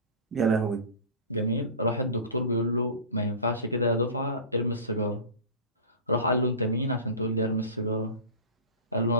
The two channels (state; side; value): inverted; both; correlation -0.34